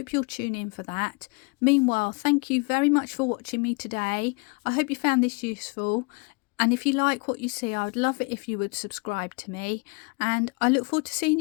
you'll tune in for that. Meanwhile, thank you very much for watching me today. I hope you found this useful, and if you like what you see, I would love it if you would subscribe to me, and I look forward to seeing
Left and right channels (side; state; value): right; quieter; 31.0 dB